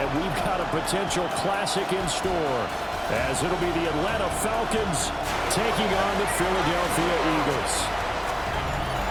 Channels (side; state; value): both; identical; correlation 1.00